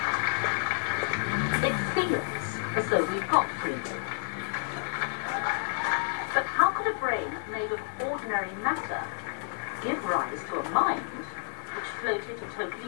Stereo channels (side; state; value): right; silent; 58 dB below the other